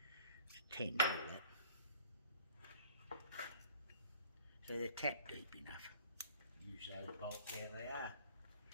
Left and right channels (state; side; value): inverted; both; correlation -0.52